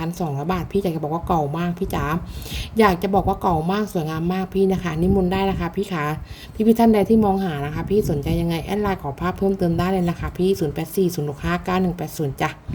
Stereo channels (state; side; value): identical; both; correlation 1.00